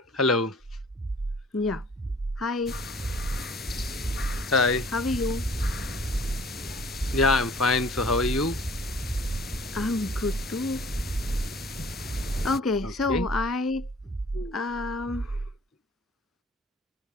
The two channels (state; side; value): normal; both; correlation 0.52